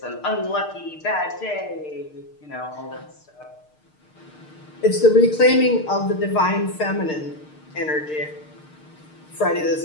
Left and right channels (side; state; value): right; late; 6.6 ms